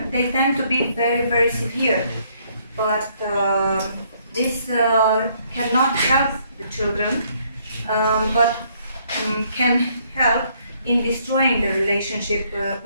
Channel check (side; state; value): both; inverted; correlation -0.67